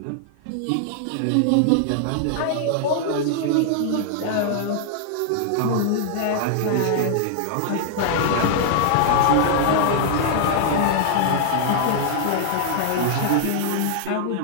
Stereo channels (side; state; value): both; different; correlation -0.01